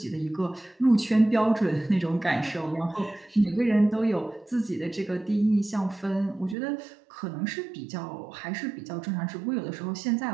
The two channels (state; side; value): drops out; left; at 6.6 s